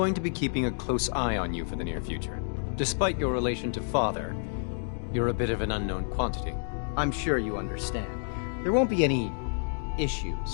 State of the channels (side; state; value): right; silent; digital silence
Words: to be keeping a close eye on you for the near future. Despite your relation to Father, you're a bit of an unknown quantity. I'm sure you understand. There won't be any